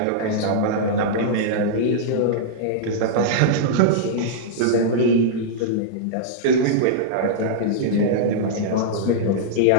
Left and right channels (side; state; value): both; different; correlation -0.03